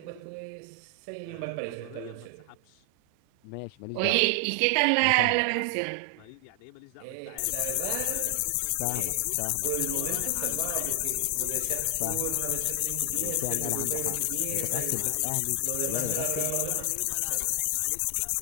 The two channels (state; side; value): different; both; correlation 0.00